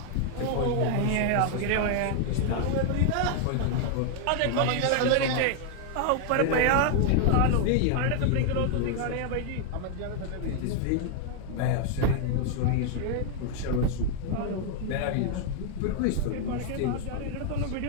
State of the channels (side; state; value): both; different; correlation 0.00